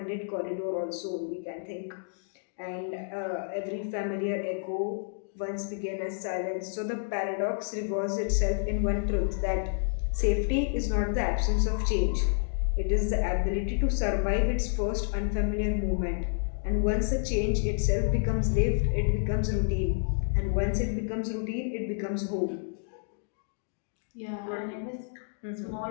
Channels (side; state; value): right; silent; digital silence